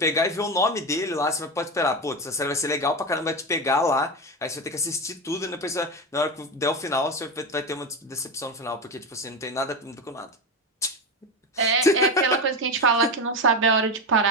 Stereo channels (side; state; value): both; normal; correlation 0.18